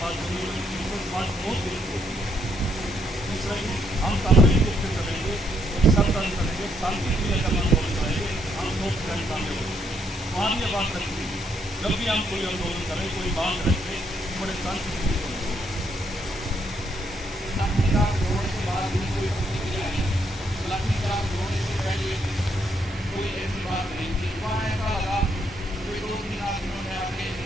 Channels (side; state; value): both; normal; correlation 0.74